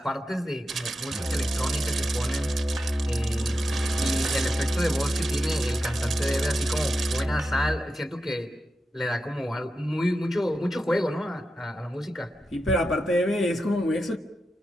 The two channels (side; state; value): both; normal; correlation 0.89